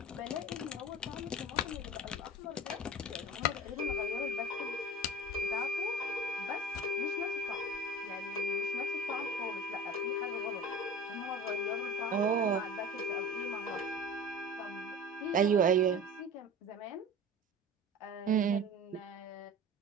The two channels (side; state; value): both; normal; correlation 0.36